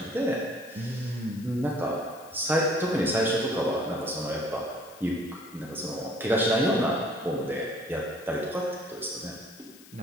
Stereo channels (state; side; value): noise; left; hiss, 21 dB below the sound